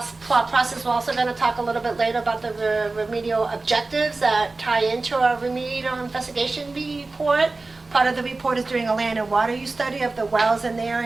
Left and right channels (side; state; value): left; quieter; 3.5 dB